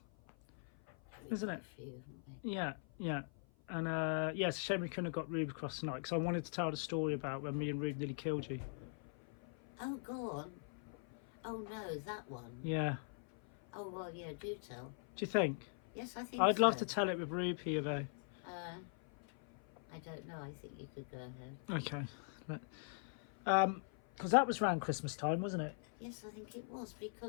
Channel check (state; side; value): silent; right; 50 dB below the other